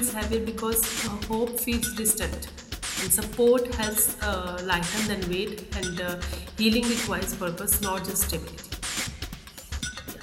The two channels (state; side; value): identical; both; correlation 1.00